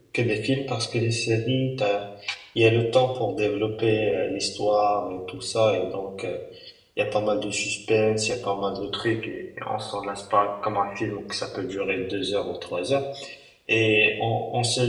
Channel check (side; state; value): both; identical; correlation 1.00